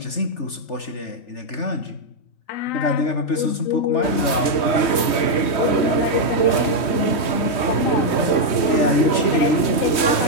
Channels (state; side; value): late; right; 3.2 ms